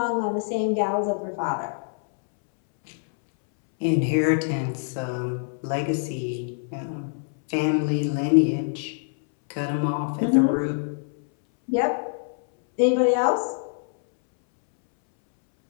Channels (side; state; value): right; silent; 62 dB below the other